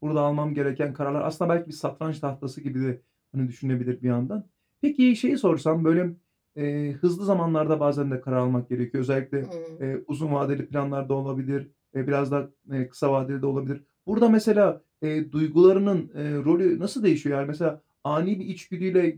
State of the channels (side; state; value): both; identical; correlation 1.00